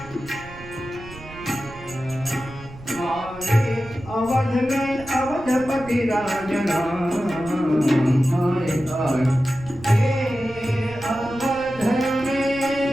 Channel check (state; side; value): noise; right; rumble, 17 dB below the sound